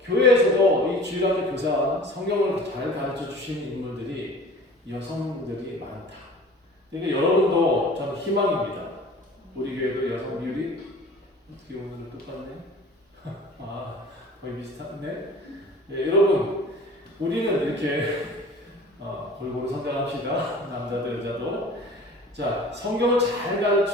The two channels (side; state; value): both; normal; correlation 0.43